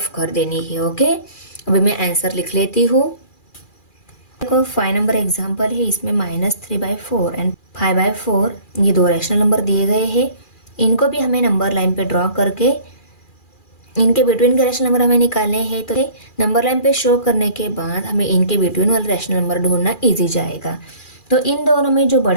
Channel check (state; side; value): late; right; 2.4 ms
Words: कर देनी है। ओके, अभी मैं आंसर लिख लेती हूँ। देखो 5 नंबर एग्जाम्पल है, इसमें -3/4 एंड 5/4 ये 2 रैशनल नंबर दिए गए हैं। इनको भी हमें नंबर लाइन पे ड्रॉ करके इनके बिटवीन के रैशनल नंबर हमें निकालने हैं। तो नंबर लाइन पे शो करने के बाद हमें इनके बिटवीन वाले रैशनल नंबर ढूंढना ईजी जाएगा। तो इन दोनों में जो